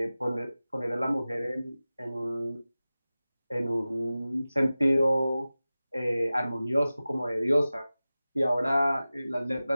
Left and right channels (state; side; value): inverted; both; correlation -0.96